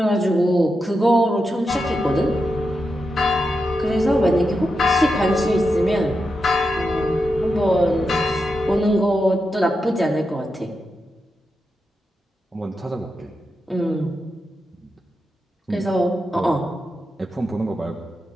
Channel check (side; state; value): both; normal; correlation 0.87